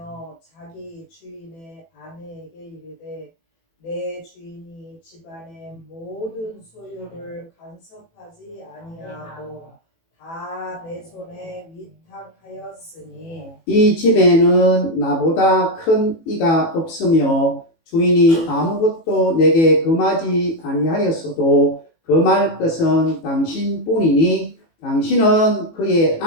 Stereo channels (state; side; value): late; right; 18 ms